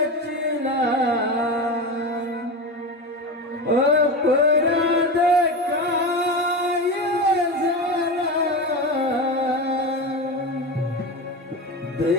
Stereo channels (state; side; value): normal; both; correlation 0.22